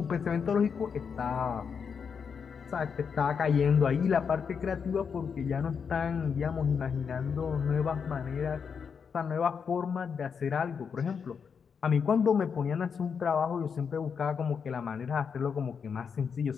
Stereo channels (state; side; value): quieter; right; 6.4 dB